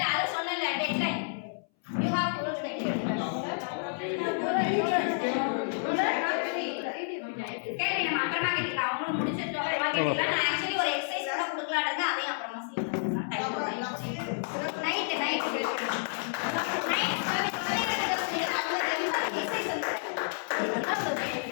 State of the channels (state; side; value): silent; right; 58 dB below the other